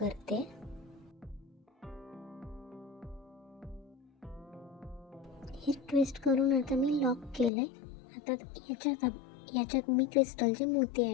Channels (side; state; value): right; drops out; at 7.5 s